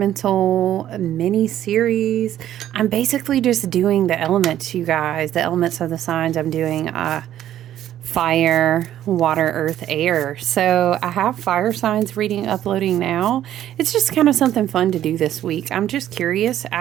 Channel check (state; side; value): quieter; left; 11.9 dB